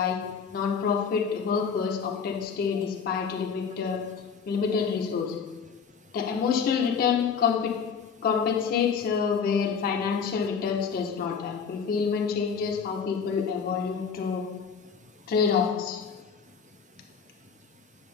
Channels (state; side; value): quieter; right; 6.3 dB